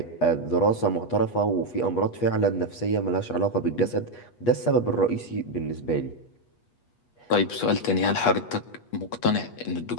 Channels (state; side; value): late; right; 8.3 ms